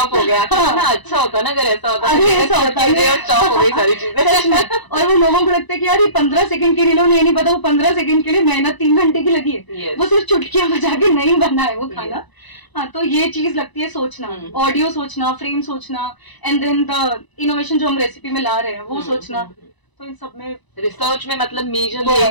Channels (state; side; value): late; right; 1.0 ms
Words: गया। ना अच्छा होता ना अगर ऐसा होता, ऐसा होता है, चॉप हो गई सारी चीजें। और वो लोगों को लगता है कि यार ये 15 सेकंड की रील, उन्हें नहीं पता वो 15 सेकंड के लिए मेहनत 3 घंटे की लगी है, वो सिर्फ चुटकियां बजा के नहीं बना है वो खाना। हाँ, तो ये चीज लगती है सोचना, ऑडियो सोचना, फ्रेम सोचना, एंड देन द इनोवेशन जो हम रेसिपी में ला रहे हैं वो सोचना। तो इन सब में रिसर्च में मतलब मेजर